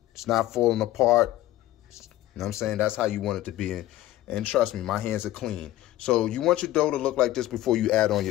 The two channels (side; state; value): right; quieter; 14.9 dB